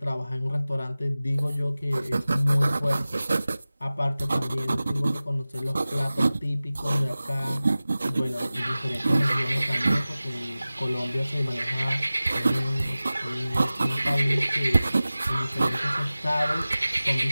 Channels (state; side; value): inverted; both; correlation -0.97